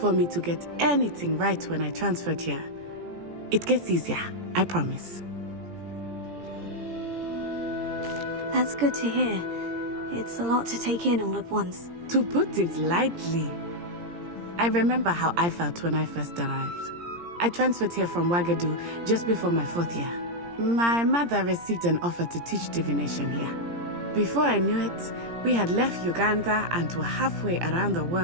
me to get anything right when I transferred here. It gets easier, I promise. That's good to hear. It's a lot to take in all at once. To put it lightly. I remember how I felt when I first arrived. I transferred here from Wagadu just before my 4th year. My mother received an offer to teach divination here. Before I knew it, we had left Uganda and were halfway around the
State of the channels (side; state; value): left; late; 17 ms